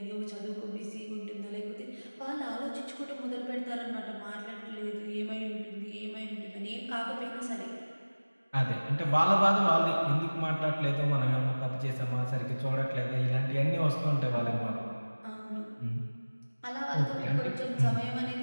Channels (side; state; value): both; inverted; correlation -1.00